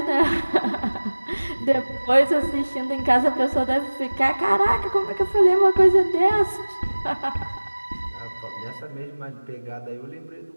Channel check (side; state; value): both; inverted; correlation -1.00